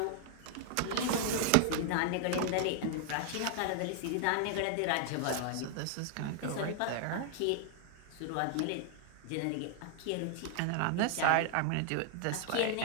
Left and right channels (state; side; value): different; both; correlation 0.00